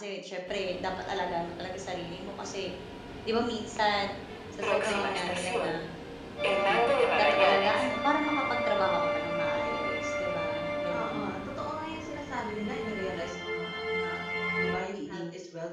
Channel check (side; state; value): both; identical; correlation 1.00